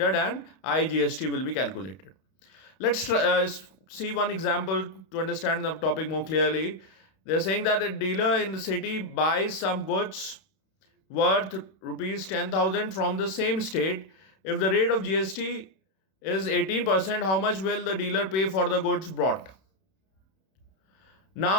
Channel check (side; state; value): right; late; 31 ms